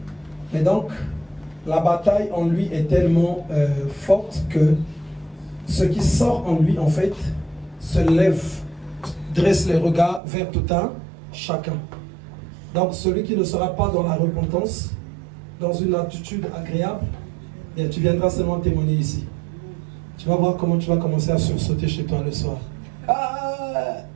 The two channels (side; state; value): left; drops out; at 10.2 s